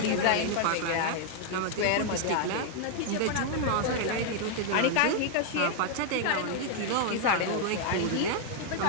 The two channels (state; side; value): different; both; correlation 0.00